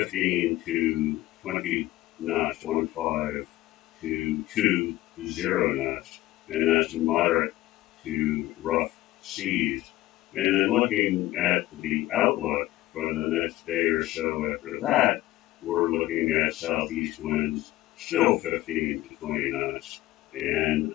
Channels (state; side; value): quieter; right; 16.6 dB